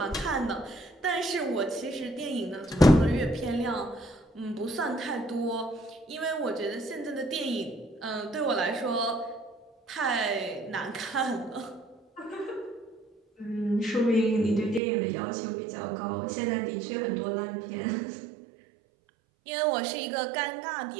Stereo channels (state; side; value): drops out; left; at 14.8 s